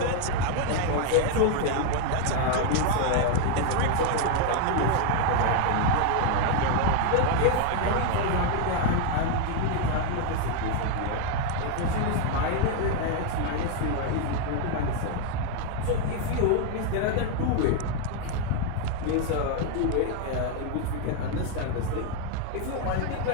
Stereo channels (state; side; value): different; both; correlation 0.01